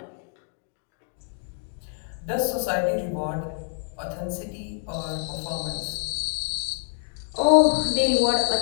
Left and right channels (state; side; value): silent; right; 61 dB below the other